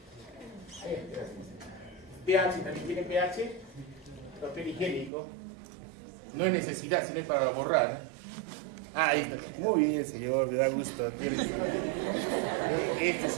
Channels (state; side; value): drops out; left; at 5.1 s